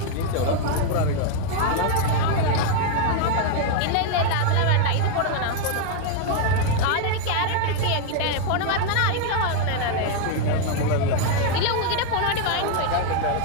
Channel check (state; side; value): different; both; correlation 0.01